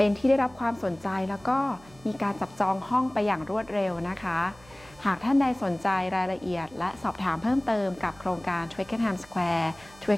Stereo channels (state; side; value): noise; right; hum, 25 dB below the sound